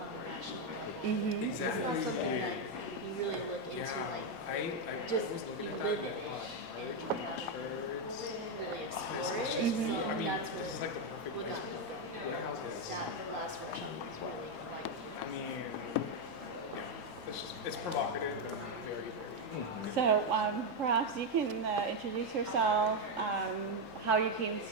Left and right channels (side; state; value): both; normal; correlation 0.04